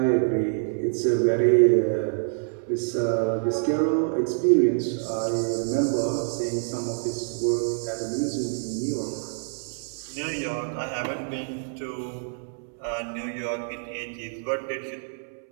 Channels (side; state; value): left; silent; 61 dB below the other